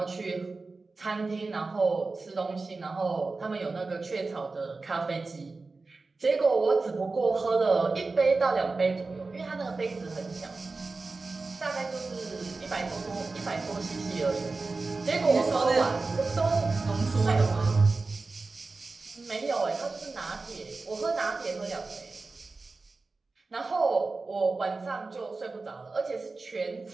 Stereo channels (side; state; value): left; quieter; 3.8 dB